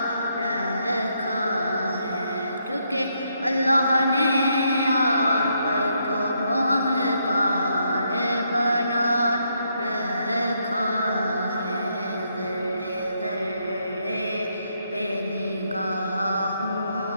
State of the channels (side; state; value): both; inverted; correlation -0.76